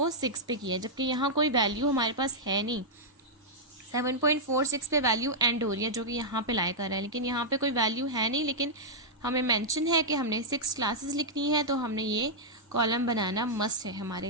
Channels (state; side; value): normal; both; correlation -0.07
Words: 6 पे किया, जबकि यहाँ कोई वैल्यू हमारे पास है नहीं। 7.46 पे वैल्यू एंड हो रही है जो कि यहाँ पे लाई कर रहा है, लेकिन यहाँ पे कोई वैल्यू है नहीं, लेकिन हमें मेंशन है कि हमने 6 क्लासेस लिखनी है, तो हमने ये कॉलम बनाना मस्ट है हमारे